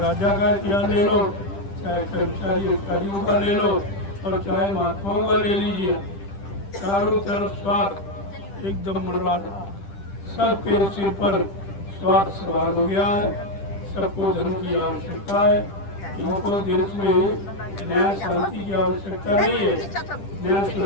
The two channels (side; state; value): right; late; 10 ms